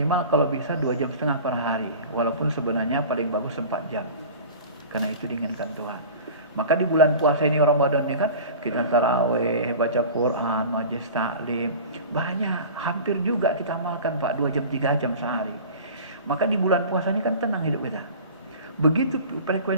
kalau bisa 2,5 jam per hari. Walaupun sebenarnya paling bagus 4 jam. Karena itu diinginkan Tuhan. Maka di bulan puasa ini Ramadan ini kan kita taraweh, baca Quran, majelis taklim. Banyak, hampir juga kita amalkan Pak 2 jam 3 jam sehari. Maka di bulan puasa ini kan tenang hidup kita. Begitu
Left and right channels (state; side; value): inverted; both; correlation -0.38